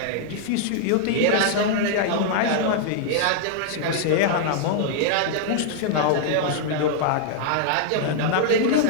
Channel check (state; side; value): different; both; correlation -0.01